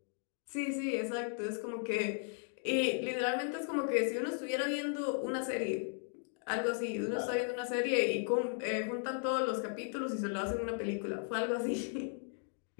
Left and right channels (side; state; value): right; silent; 54 dB below the other